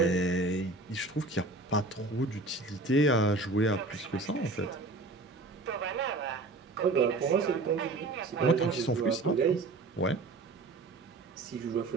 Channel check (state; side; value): quieter; left; 3.2 dB